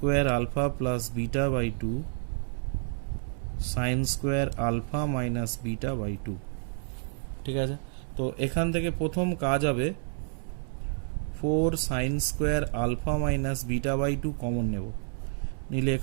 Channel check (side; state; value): left; silent; 58 dB below the other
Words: alpha plus beta by 2 sine square alpha minus beta by 2। ঠিক আছে, তো এখান থেকে প্রথম কাজ হবে 4 sine square alpha minus beta by 2 common নেব, নিলে